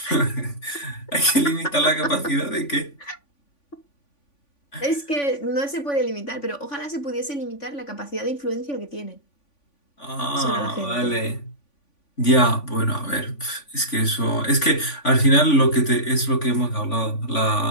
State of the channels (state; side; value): late; right; 3.5 ms